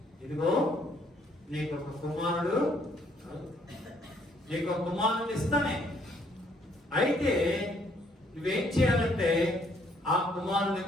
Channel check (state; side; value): normal; both; correlation 0.66